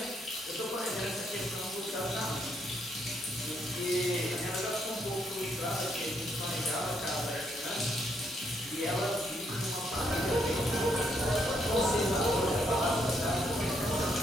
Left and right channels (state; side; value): normal; both; correlation 0.74